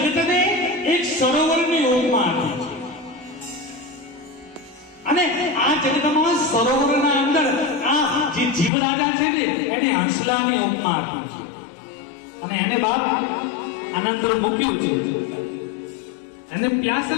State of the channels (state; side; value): drops out; right; at 8.7 s